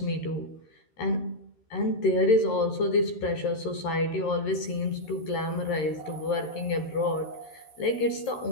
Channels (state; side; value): late; right; 13 ms